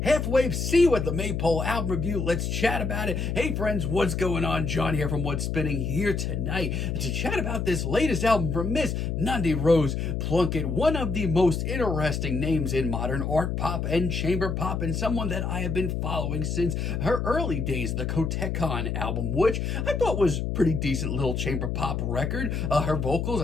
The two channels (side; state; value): left; noise; hum, 1 dB below the sound